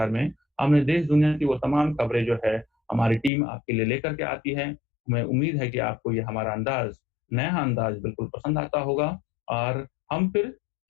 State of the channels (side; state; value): right; drops out; at 3.3 s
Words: में हमने देश दुनिया की वो तमाम खबरें जो है हमारी टीम आपके लिए लेकर के आती है। हमें उम्मीद है कि आपको ये हमारा नया अंदाज बिल्कुल पसंद आता होगा और हम फिर